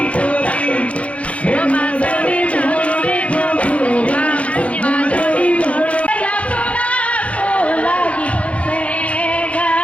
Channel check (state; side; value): late; right; 0.064 ms